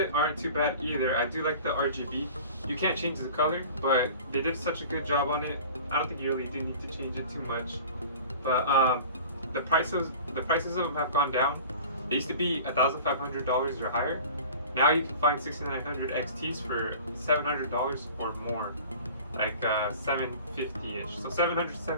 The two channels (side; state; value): both; inverted; correlation -0.42